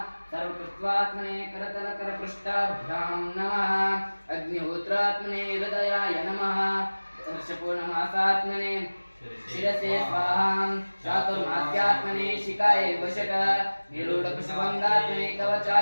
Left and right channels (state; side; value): inverted; both; correlation -1.00